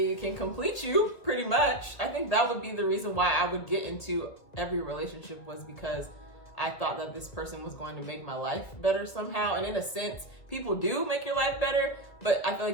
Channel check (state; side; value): late; right; 2.1 ms